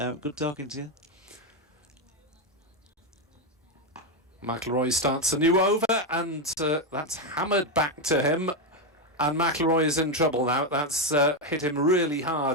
talking to you. McIlroy starts a new over, and that's hammered back to him, and McIlroy is in trouble now. That's hit him really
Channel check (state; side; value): normal; both; correlation 0.06